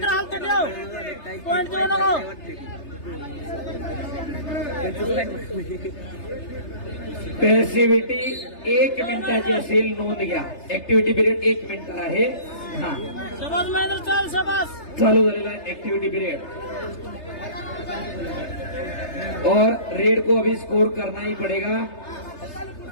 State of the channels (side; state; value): right; late; 3.3 ms